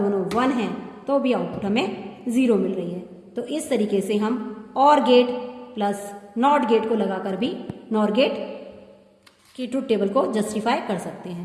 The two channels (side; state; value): both; identical; correlation 1.00